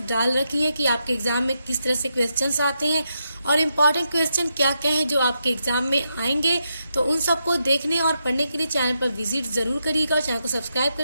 डाल रखी हैं कि आपके एग्जाम में किस तरह से क्वेश्चंस आते हैं और इम्पॉर्टेंट क्वेश्चन क्या क्या हैं जो आपके एग्जाम में आएंगे। तो उन सबको देखने और पढ़ने के लिए चैनल पर विजिट जरूर करिएगा और चैनल को सब्सक्राइब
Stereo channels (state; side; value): inverted; both; correlation -0.83